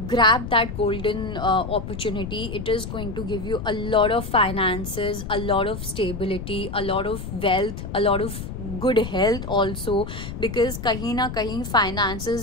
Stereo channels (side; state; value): left; noise; rumble, 8 dB below the sound